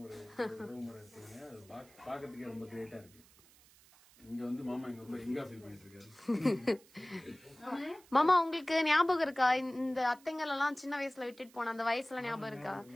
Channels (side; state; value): right; noise; hiss, 26 dB below the sound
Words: ஒரு உறவுமுறை இருக்கீங்க. அது பாக்கிறதுக்கே ரொம்ப கிரேட்டா இருக்கு. இங்க வந்து மாமா இங்க ரொம்ப எங்கா ஃபீல் பண்ணிட்டு இருக்காரு. மாமா உங்களுக்கு ஞாபகம் இருக்கா இந்த அத்தைங்கள் எல்லாம் சின்ன வயசுல விட்டுட்டு போன அந்த வயசுல ஞாபகம் இருக்கா?